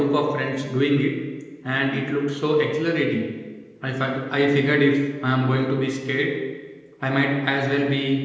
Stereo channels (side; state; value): both; identical; correlation 1.00